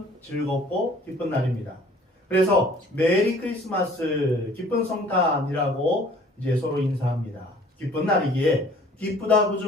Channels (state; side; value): normal; both; correlation 0.52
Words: 즐겁고 기쁜 날입니다. 그래서 메리 크리스마스, 기쁜 성탄이라고 이제 서로 인사합니다. 기쁜 날이기에 기쁘다